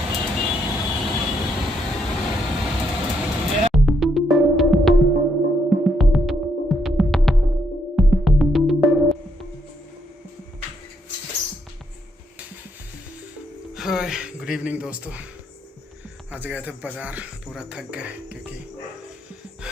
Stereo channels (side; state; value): both; normal; correlation 0.75